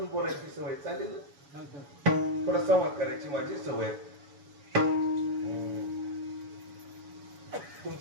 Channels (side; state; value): left; late; 7.1 ms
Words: बोलायची सवय, चालेल थोडा संवाद करायची माझी सवय.